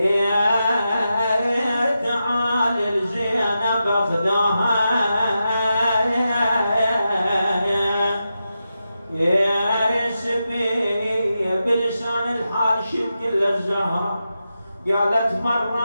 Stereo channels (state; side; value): inverted; both; correlation -0.89